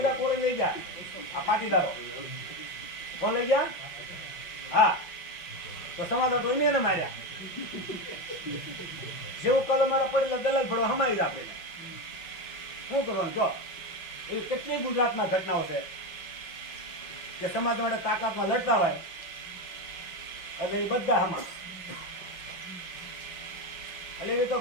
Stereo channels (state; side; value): late; right; 5.8 ms